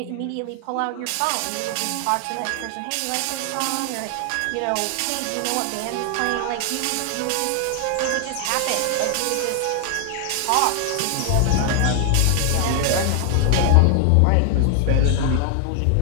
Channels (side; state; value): both; different; correlation 0.00